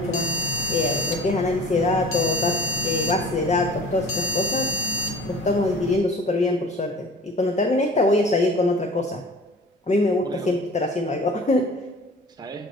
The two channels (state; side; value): normal; both; correlation 0.44